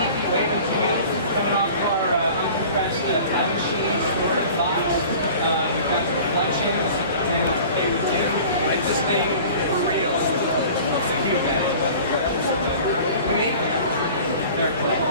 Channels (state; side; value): inverted; both; correlation -0.43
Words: coming off our uncompressed time machine storage box. We've got some collections, and they would do this thing for real. It's a huge edit. We make them. They're clay.